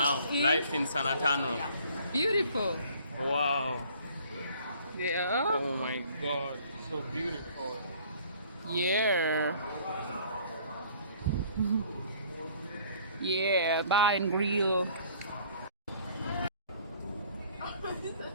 Life in San Antonio. Beautiful. Wow. Yeah. Oh my God. So beautiful. Yeah. Yeah, bar and grill.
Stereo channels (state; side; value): inverted; both; correlation -0.55